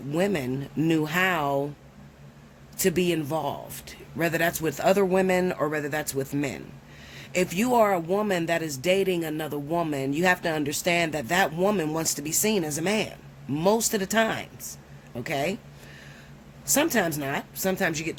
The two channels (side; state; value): both; identical; correlation 1.00